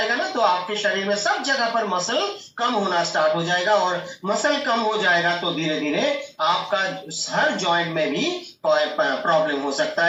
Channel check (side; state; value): both; identical; correlation 1.00